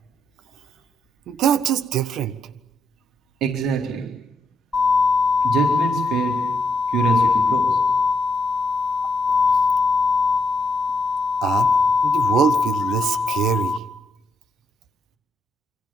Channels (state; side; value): normal; both; correlation 0.78